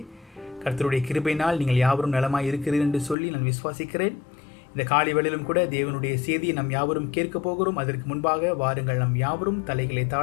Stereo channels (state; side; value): drops out; right; at 3.2 s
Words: கர்த்தருடைய கிருபையினால் நீங்கள் யாவரும் நலமாய் இருக்கிறீர்கள் என்று சொல்லி நான் விசுவாசிக்கிறேன். இந்த காலை வேளையிலும் கூட தேவனுடைய செய்தியை நாம் யாவரும் கேட்க போகிறோம். அதற்கு முன்பாக வாருங்கள், நாம் யாவரும் தலைகளை